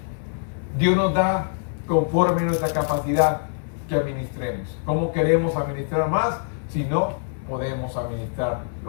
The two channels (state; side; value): silent; right; digital silence